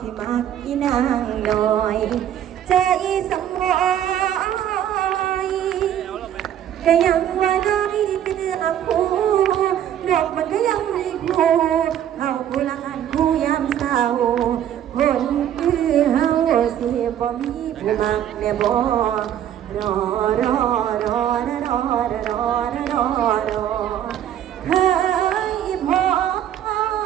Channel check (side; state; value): left; quieter; 10.5 dB